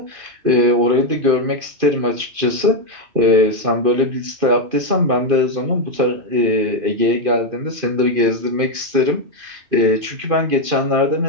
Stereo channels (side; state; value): left; late; 2.5 ms